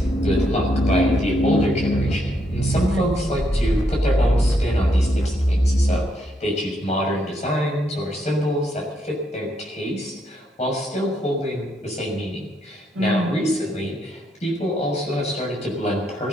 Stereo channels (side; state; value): both; normal; correlation 0.76